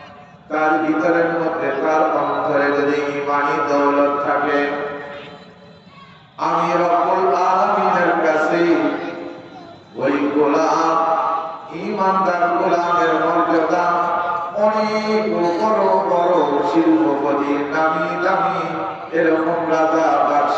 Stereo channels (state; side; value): identical; both; correlation 1.00